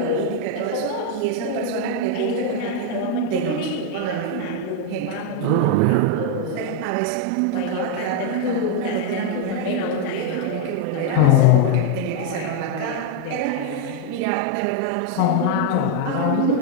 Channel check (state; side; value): different; both; correlation 0.00